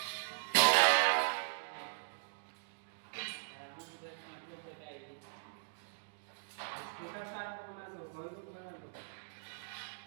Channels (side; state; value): left; silent; digital silence